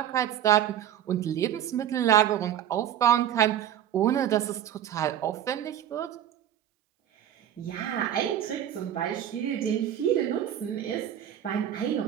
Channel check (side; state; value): left; quieter; 10.7 dB